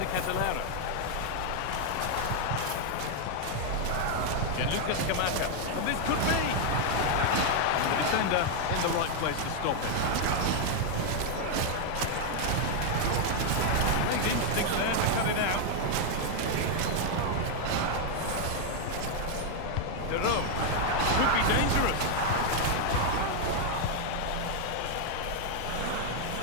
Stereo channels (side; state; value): both; different; correlation 0.00